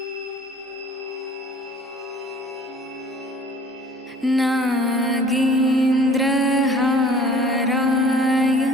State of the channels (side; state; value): both; normal; correlation 0.50